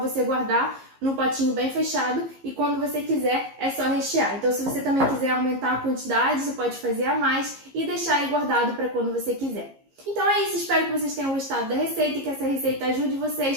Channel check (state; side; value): late; left; 15 ms